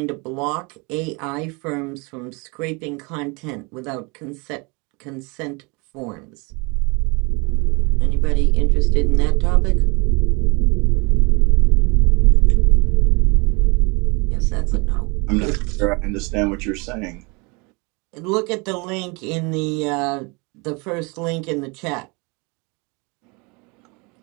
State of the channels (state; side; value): quieter; left; 29.2 dB